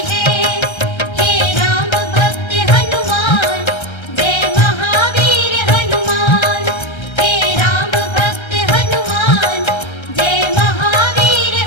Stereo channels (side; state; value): right; late; 1.3 ms